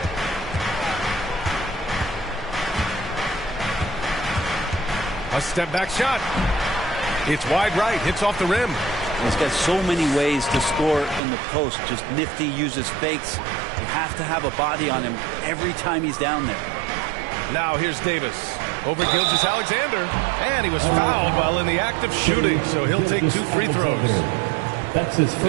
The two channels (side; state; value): left; drops out; at 11.2 s